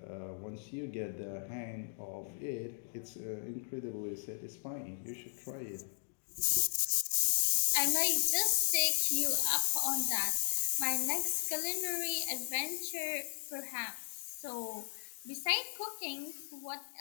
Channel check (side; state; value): right; silent; digital silence